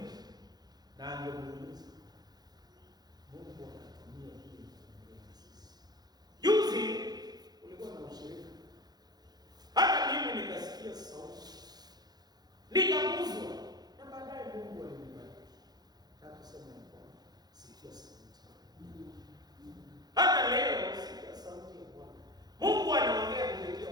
na angemuuliza Mungu anatumia hii kwa sisi. Juzi kulikuwa na ushirika, hata mimi nikasikia sauti, nikaguzwa, na baadaye Mungu alinibariki. Hakusema ya Bwana, sikia sauti. Hata leo sikia sauti ya Bwana. Mungu anaongea kupitia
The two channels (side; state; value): left; late; 0.19 ms